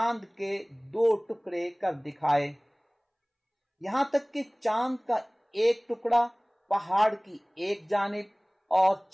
کے 2 ٹکڑے کر دکھائے، یہاں تک کہ چاند کا ایک ٹکڑا پہاڑ کی ایک جانب اور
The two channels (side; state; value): both; identical; correlation 1.00